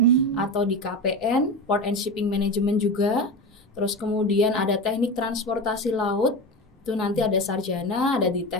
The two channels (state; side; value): normal; both; correlation 0.24